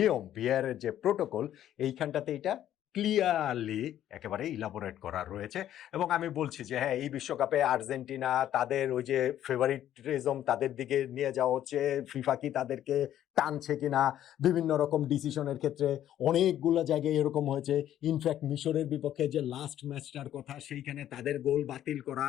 ভিআর এর যে প্রোটোকল, এইখানটাতে এটা ক্লিয়ারলি একেবারে ইলাবোরেট করা রয়েছে। এবং আমি বলছি যে হ্যাঁ, এই বিশ্বকাপে আর্জেন্টিনা তাদের ওই যে ফেভারিটিজম তাদের দিকে নিয়ে যাওয়া হচ্ছে, ফিফা কি তাদেরকে টানছে কিনা, বিভিন্ন রকম ডিসিশনের ক্ষেত্রে অনেকগুলো জায়গায় এরকম হয়েছে। ইনফ্যাক্ট মিশরের বিপক্ষে যে লাস্ট ম্যাচটার কথা, সেইখানে তাদের গোল বাতিল করা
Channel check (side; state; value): right; quieter; 11.6 dB